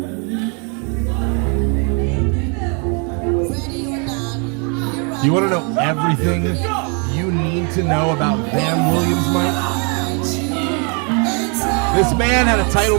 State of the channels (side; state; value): left; quieter; 36.1 dB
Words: You want to know everything you need to know about Van Williams, Mike? This man had a title